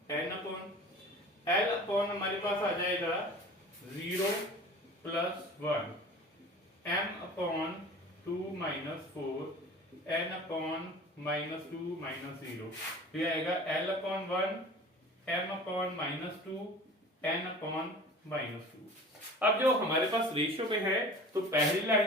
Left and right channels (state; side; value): normal; both; correlation 0.41